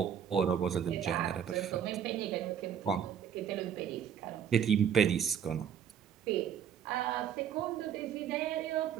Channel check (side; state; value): left; quieter; 8.6 dB